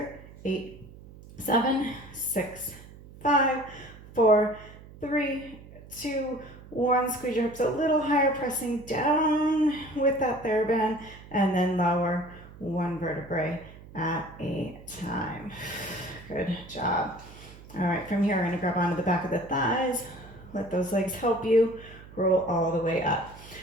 8, 7, 6, 5, 4, 3, 2, 1, squeeze your hips a little higher, pressing down with that Theraband, and then lower 1 vertebrae at a time. Good job. All right, from here, I'm gonna grab onto the back of the thighs, let those legs help you, roll all the way up.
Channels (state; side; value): noise; right; hum, 19 dB below the sound